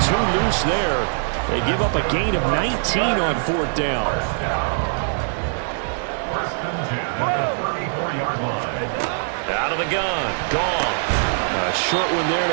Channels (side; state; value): left; silent; digital silence